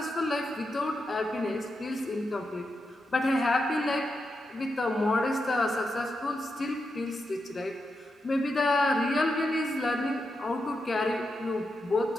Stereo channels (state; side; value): normal; both; correlation 0.86